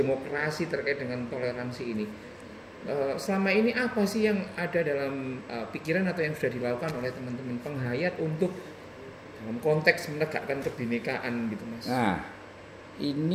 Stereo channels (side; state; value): both; identical; correlation 1.00